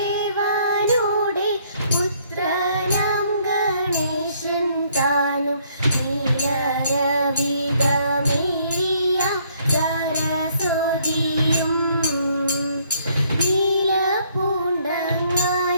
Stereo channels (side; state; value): both; inverted; correlation -0.66